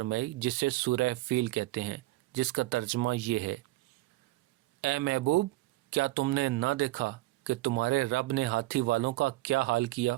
جسے سورہ فیل کہتے ہیں، جس کا ترجمہ یہ ہے: اے محبوب، کیا تم نے نہ دیکھا کہ تمہارے رب نے ہاتھی والوں کا کیا حال کیا؟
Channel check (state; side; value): quieter; left; 18.9 dB